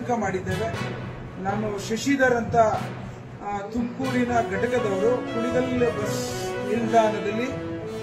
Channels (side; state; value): both; identical; correlation 1.00